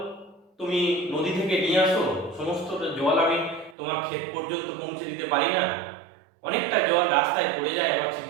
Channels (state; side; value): drops out; left; at 3.8 s